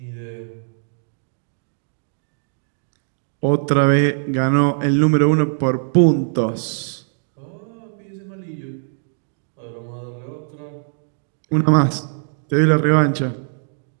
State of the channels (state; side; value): silent; left; digital silence